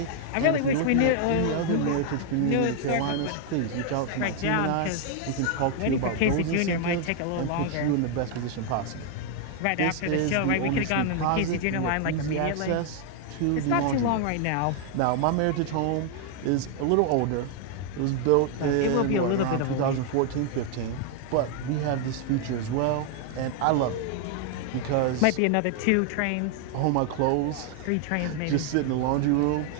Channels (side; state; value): both; different; correlation 0.00